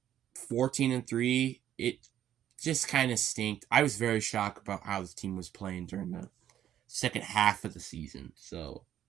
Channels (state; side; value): quieter; left; 11.1 dB